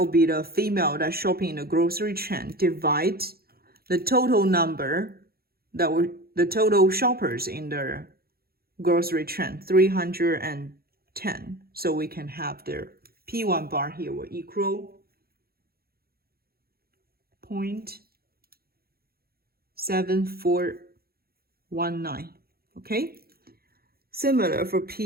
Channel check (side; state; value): left; late; 0.44 ms